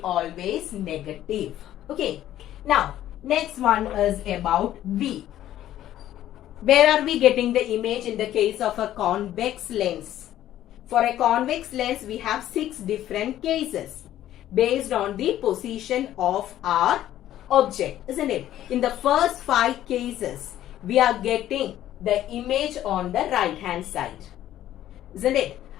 always negative. Okay. Now, next one is about V. Where are we getting the image in the case of a convex lens? For a convex lens, we have 6 different cases based on the position of our object, isn't it? In the first 5 cases, we are getting the image on the right hand side, isn't it?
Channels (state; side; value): quieter; right; 12.6 dB